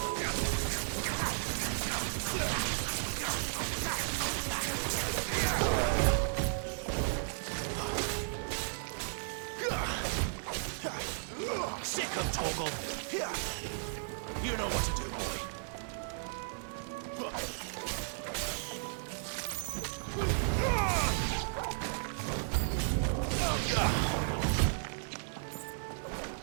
Sick of Torgal! You know what to do, boy.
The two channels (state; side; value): silent; left; 55 dB below the other